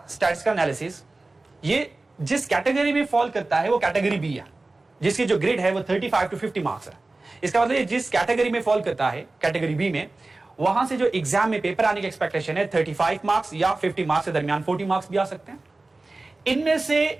स्टैटिस्टिकल एनालिसिस, ये जिस कैटेगरी में फॉल करता है वो कैटेगरी बी है, जिसकी जो ग्रेड है वो 35 to 50 मार्क्स है. इसका मतलब जिस कैटेगरी में फॉल करता है कैटेगरी बी में, वहां से जो एग्जाम में पेपर आने की एक्सपेक्टेशन है 35 मार्क्स या 50 मार्क्स के दरमियान 40 मार्क्स भी आ सकते हैं. इनमें से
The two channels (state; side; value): quieter; left; 3.2 dB